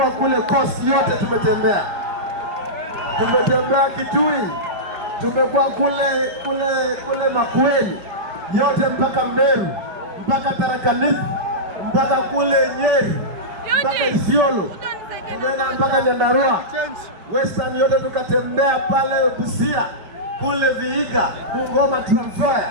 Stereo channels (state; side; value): late; left; 5.2 ms